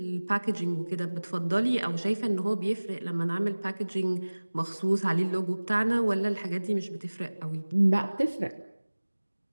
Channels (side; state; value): both; inverted; correlation -1.00